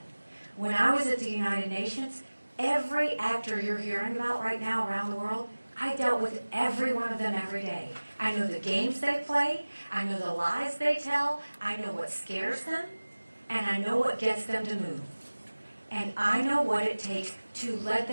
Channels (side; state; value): both; inverted; correlation -1.00